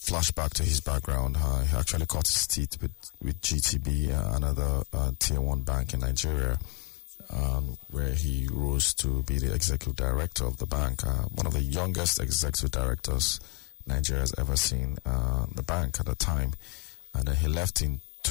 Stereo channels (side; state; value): right; quieter; 28.2 dB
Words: back to his background, he actually cut his teeth with GTB, another tier 1 bank in Nigeria, where he rose to be the executive director of the bank, one of the youngest executive directors Nigeria has ever seen, the bank at the time. And then he left in